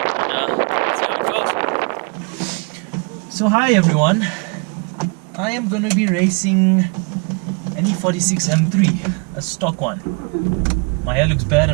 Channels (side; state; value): left; quieter; 33.6 dB